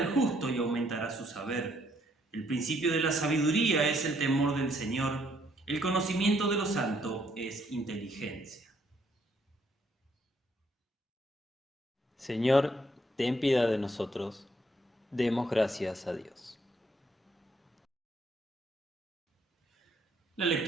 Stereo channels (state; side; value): normal; both; correlation 0.69